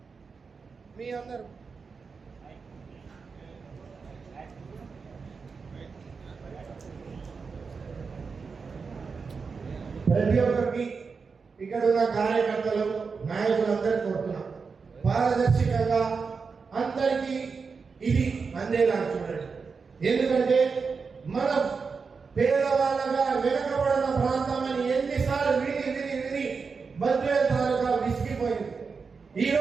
మీ అందరూ ప్రతి ఒక్కరికి ఇక్కడ ఉన్న కార్యకర్తలు నాయకులందరూ కోరుతున్నాం పారదర్శకంగా అందరికీ ఇది అందేలా చూడండి. ఎందుకంటే మనం పేదవాళ్ళగా వెనకబడిన ప్రాంతం అని ఎన్నిసార్లు విని బద్వేల్ తాలూకా విసిగిపోయింది.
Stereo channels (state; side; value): quieter; left; 5.1 dB